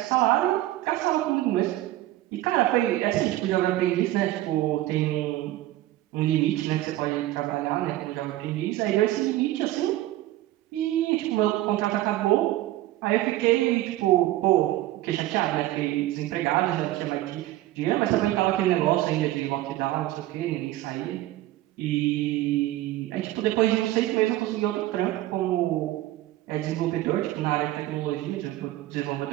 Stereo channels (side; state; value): left; quieter; 15.6 dB